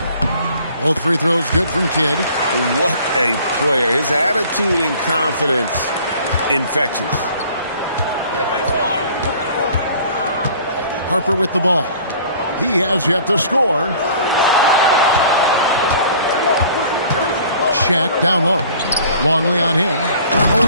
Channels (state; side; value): inverted; both; correlation -0.51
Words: Both free throws good from Kidd. What a player. His attitude and confidence infectious. Harper with the ball. He has yet to score. Shaq down low. Longley on him.